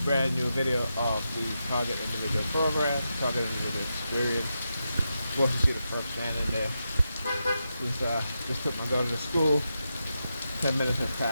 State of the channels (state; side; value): inverted; both; correlation -0.87